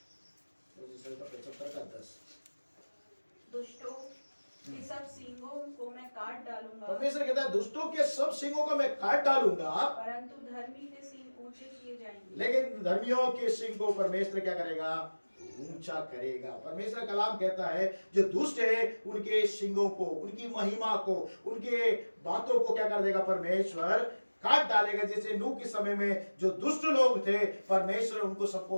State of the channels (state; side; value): inverted; both; correlation -1.00